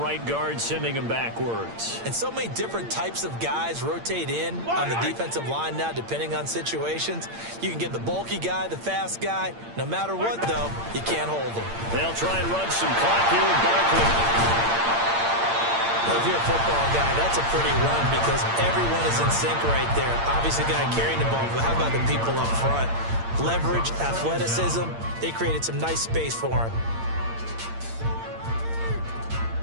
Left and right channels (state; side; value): late; left; 8.7 ms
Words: guard sending him backwards. And so many different types of guys rotate in on the defensive line now, depending on situations. You can get the bulky guy, the fast guy. No matter what, though, you can't hold them. They'll try and run some clock here with Barkley. Well, if you're a football guy, that's a pretty run because everyone is in sync right there. Obviously, the guy carrying the ball, but how about the people up front? Leverage, athleticism, they created some nice space for him.